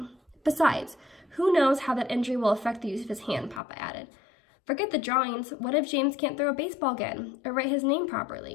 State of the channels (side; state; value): right; drops out; at 3.6 s